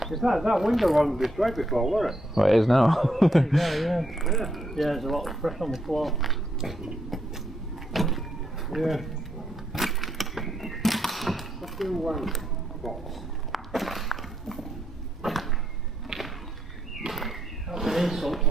That window wasn't destroyed before, was it? Well, it is now. Yeah, there's a lot of pressure on the floor. Yeah. Let's do one box. That's an insult to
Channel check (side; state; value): both; normal; correlation 0.77